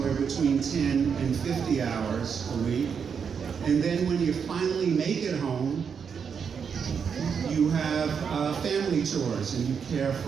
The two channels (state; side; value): quieter; left; 6.6 dB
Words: between 10 and 50 hours a week. And then when you finally make it home, you have family chores and you care